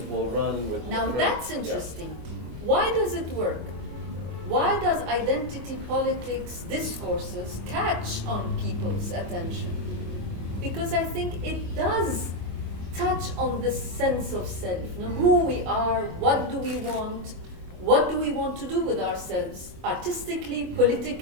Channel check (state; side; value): late; left; 24 ms